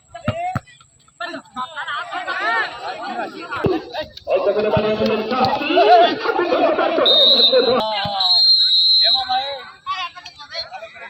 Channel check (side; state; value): both; identical; correlation 1.00